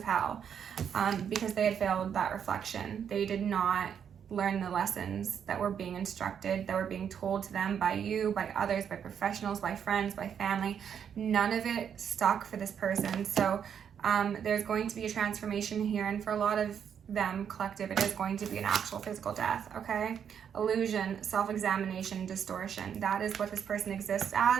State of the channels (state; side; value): quieter; left; 8.1 dB